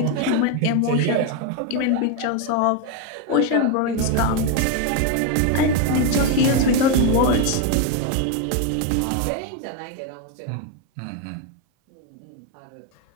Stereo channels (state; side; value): different; both; correlation 0.02